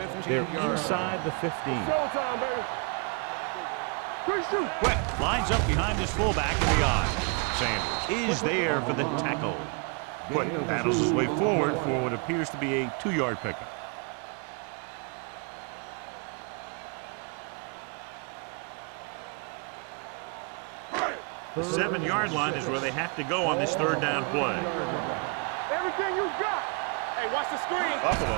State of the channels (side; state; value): left; quieter; 36.1 dB